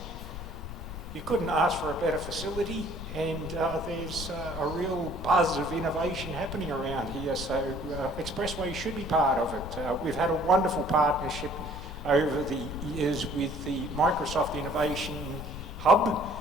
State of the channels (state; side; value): noise; left; rumble, 9 dB below the sound